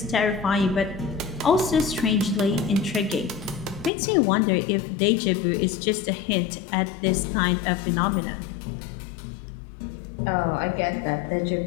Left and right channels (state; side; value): drops out; right; at 3.9 s